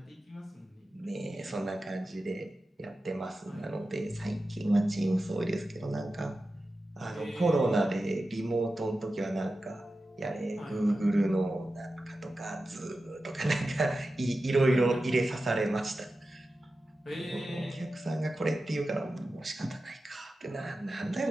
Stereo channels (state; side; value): normal; both; correlation 0.93